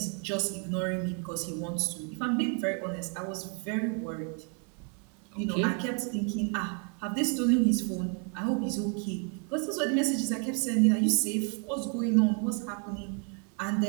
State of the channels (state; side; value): quieter; left; 39.7 dB